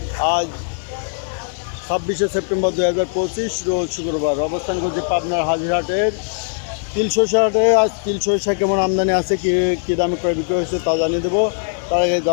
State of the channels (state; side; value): silent; right; digital silence